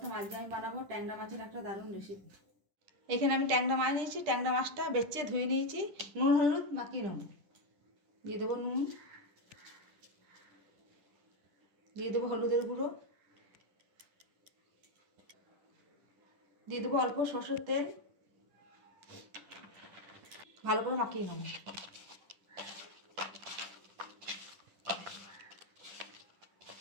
আজকে আমি বানাবো ট্যাংরা মাছের একটা দারুণ রেসিপি। এখানে আমি ট্যাংরা মাছ নিয়েছি। ট্যাংরা মাছটা বেছে ধুয়ে নিয়েছি, নুন হলুদ মাখিয়ে নেব। দিয়ে দেবো নুন, দিয়ে দেবো হলুদের গুঁড়ো, দিয়ে দেবো অল্প সরষের তেল, ভালো করে মাখিয়ে নেব।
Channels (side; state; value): left; late; 10 ms